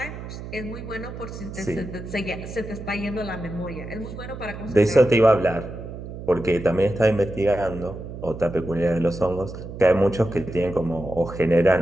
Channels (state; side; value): noise; right; hum, 10 dB below the sound